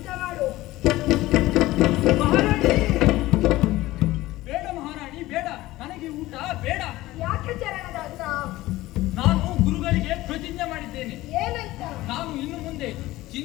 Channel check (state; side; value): quieter; right; 17.5 dB